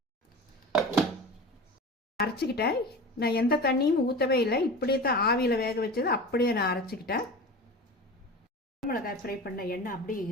அரைச்சிக்கிட்டேன். நான் எந்த தண்ணியும் ஊற்றவே இல்லை, இப்படியே தான் ஆவியில் வேக வச்சது அப்படியே நான் அரைச்சிக்கிட்டேன். மிளகாய் ஃப்ரை பண்ண எண்ணெய் அப்படியே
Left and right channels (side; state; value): both; normal; correlation 0.33